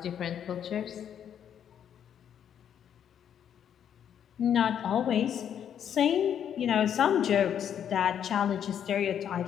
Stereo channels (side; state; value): right; quieter; 9.0 dB